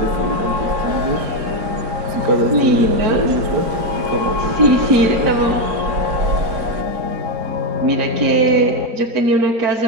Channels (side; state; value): left; late; 4.4 ms